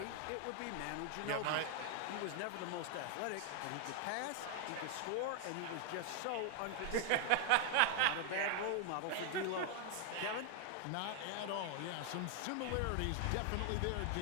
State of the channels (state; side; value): different; both; correlation 0.00